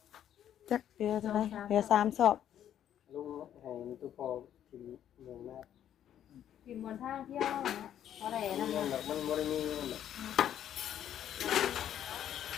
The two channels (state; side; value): quieter; right; 10.4 dB